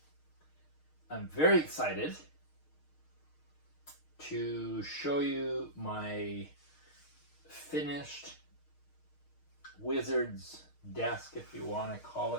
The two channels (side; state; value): right; late; 6.5 ms